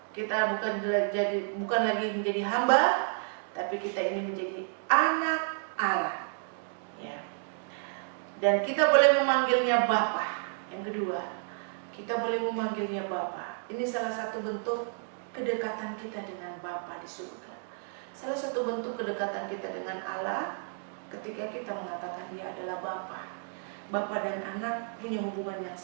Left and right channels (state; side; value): silent; left; 57 dB below the other